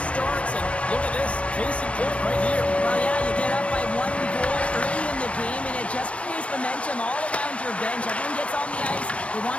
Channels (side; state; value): right; late; 0.062 ms